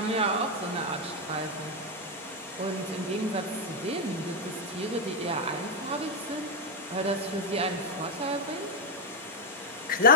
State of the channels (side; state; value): both; normal; correlation 0.02